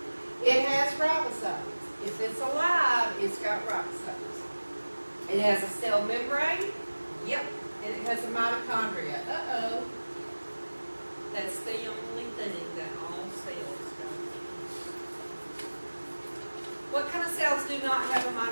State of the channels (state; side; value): inverted; both; correlation -1.00